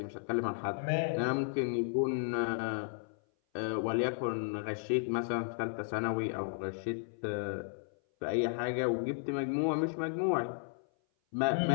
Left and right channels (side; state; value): right; silent; 55 dB below the other